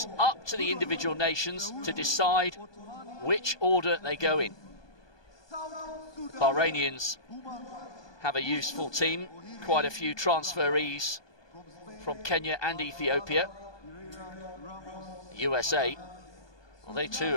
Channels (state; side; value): late; right; 1.2 ms